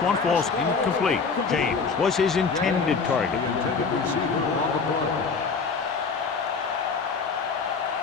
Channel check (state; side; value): quieter; right; 5.0 dB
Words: falls incomplete. James was his intended target. The intended receiver on the play.